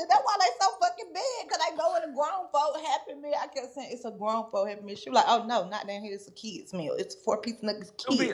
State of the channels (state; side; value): identical; both; correlation 1.00